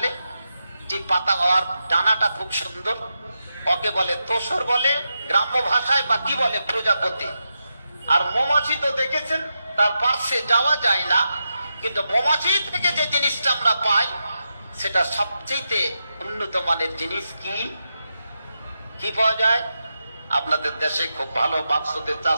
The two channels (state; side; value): inverted; both; correlation -0.87